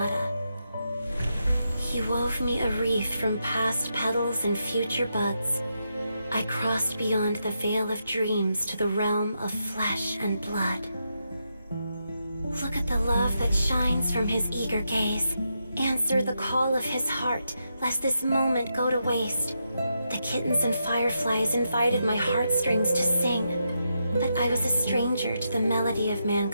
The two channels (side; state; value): both; inverted; correlation -0.83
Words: He wove me a wreath from past petals and future buds. I crossed beyond the veil of dreams to the realm of flesh and blood. Look at the love that shines from his eager gaze. Answer the call of his heart, lest this moment go to waste. The kittens and fireflies invited my heartstrings to sing, but I was a stranger to the melody of